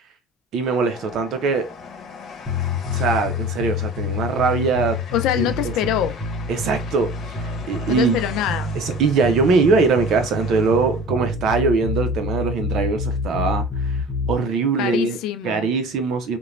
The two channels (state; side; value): normal; both; correlation 0.40